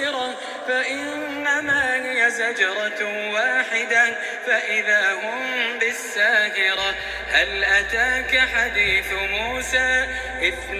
فإنما هي زجرة واحدة فإذا هم بالساهرة هل أتاك حديث موسى إذ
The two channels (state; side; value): identical; both; correlation 1.00